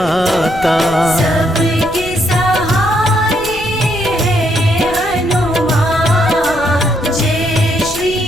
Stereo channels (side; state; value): left; noise; rumble, 14 dB below the sound